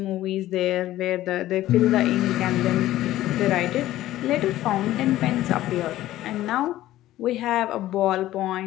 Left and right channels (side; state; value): right; quieter; 14.7 dB